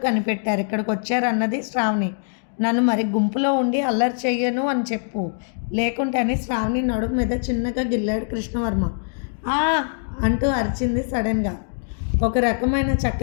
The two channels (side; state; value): right; silent; digital silence